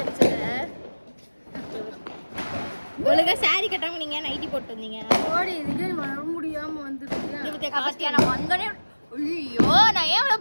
இருந்துச்சுல. ஒழுங்கா சாரி கட்டாம நீங்க நைட்டி போட்டு வந்தீங்க. ஓடி இதுக்கு வர முடியாம வந்துட்டீங்க. இது கபட்டியா நான் வந்தனே. ஐயோ நான் ஏன்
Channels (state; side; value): inverted; both; correlation -1.00